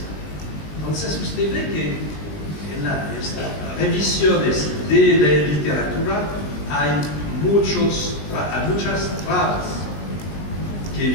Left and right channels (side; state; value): right; late; 19 ms